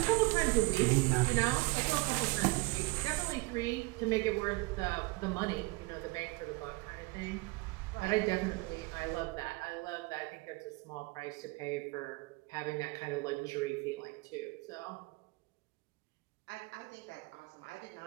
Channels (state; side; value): quieter; left; 25.0 dB